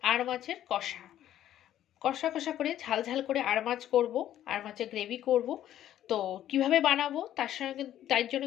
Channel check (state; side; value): quieter; right; 11.9 dB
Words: আর মাছের কষা কষা কষা করে ঝাল ঝাল করে আর মাছ করবো, আর মাছের গ্রেভি করব। তো কিভাবে বানাবো তার জন্য